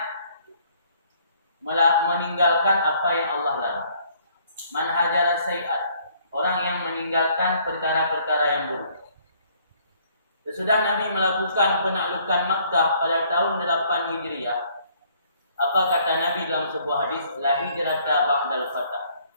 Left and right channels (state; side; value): inverted; both; correlation -0.62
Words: meninggalkan apa yang Allah larang. Man hajara sayi'at, orang yang meninggalkan perkara-perkara yang buruk. Sesudah Nabi melakukan penaklukan Makkah pada tahun 8 Hijriah, apa kata Nabi dalam sebuah hadis? La hijrata ba'dal fath.